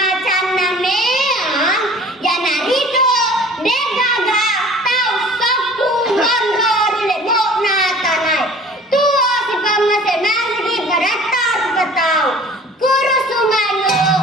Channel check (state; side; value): normal; both; correlation 0.47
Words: cana meang ya narito degaga tau saku gondor lebo na tanai tuo si pamase masigi baratar katau kuru sumano